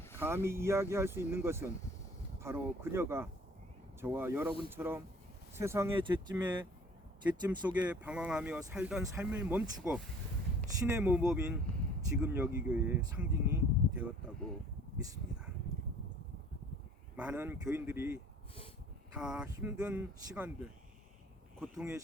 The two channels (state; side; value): normal; both; correlation 0.51